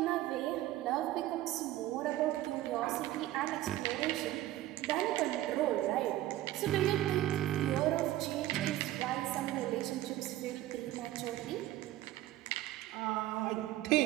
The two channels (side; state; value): left; quieter; 15.1 dB